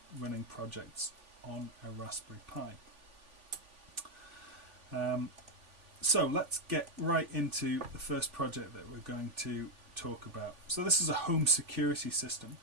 running projects on a Raspberry Pi. So let's get right into the first project that we're going to talk about. So this is a home security system.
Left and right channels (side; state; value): left; late; 3.5 ms